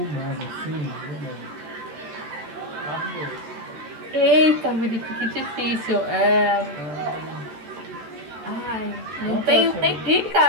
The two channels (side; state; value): left; late; 14 ms